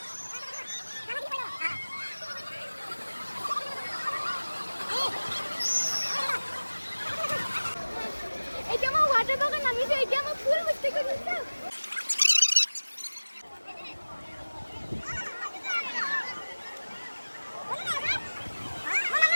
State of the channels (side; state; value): both; inverted; correlation -1.00